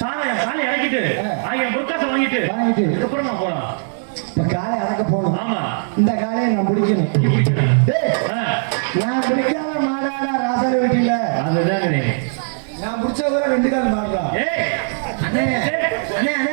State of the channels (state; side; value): silent; left; digital silence